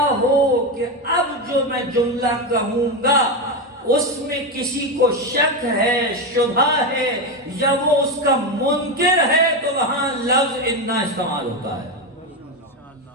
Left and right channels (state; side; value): normal; both; correlation 0.13